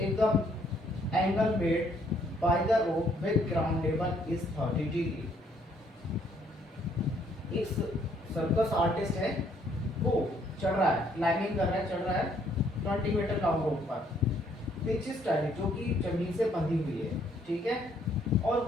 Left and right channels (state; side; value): normal; both; correlation 0.66